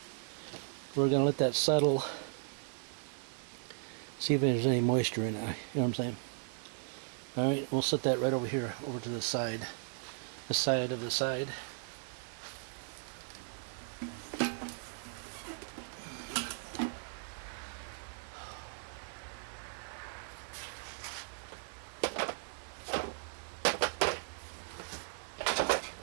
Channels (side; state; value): left; silent; digital silence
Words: We're going to let that settle. See if there's any moisture in it. You know what I'm saying? Alright, we'll set that right over here, over to the side. The side of the side.